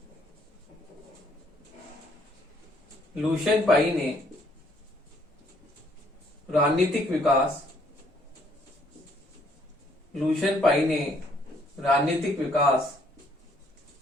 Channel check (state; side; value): normal; both; correlation 0.66